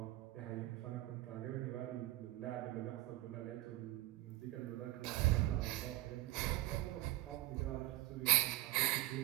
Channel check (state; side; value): quieter; left; 17.7 dB